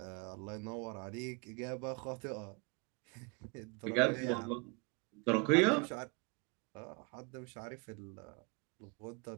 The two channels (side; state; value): left; quieter; 32.0 dB